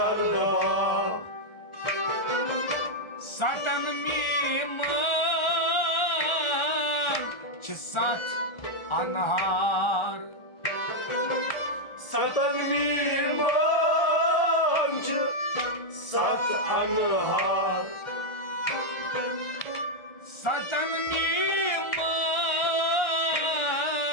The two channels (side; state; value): right; late; 1.3 ms